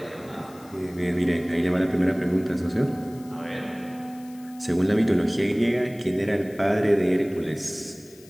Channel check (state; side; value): noise; left; hiss, 24 dB below the sound